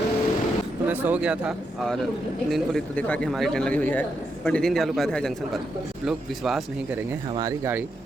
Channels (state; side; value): normal; both; correlation 0.82